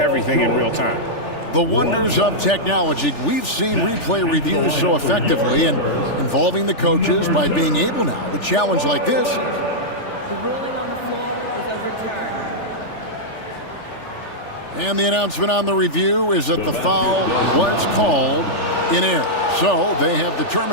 in real time. The wonders of technology. We've seen replay reviews so effectively and involving the coaches by being able now to challenge like this. The ruling on the floor is overturned. And the announcement on the review is that the foul was called in error. So they have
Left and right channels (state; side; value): late; right; 3.4 ms